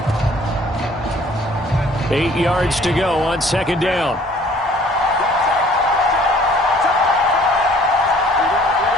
Eight yards to go on second down.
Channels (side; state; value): both; normal; correlation 0.55